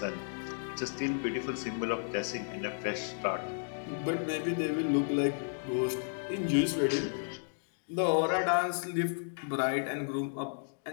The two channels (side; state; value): right; silent; digital silence